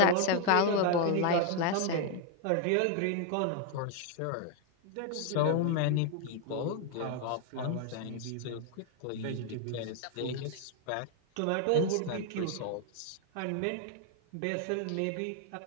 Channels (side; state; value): both; different; correlation 0.01